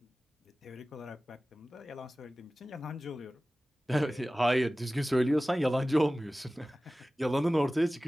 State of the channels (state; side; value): normal; both; correlation 0.97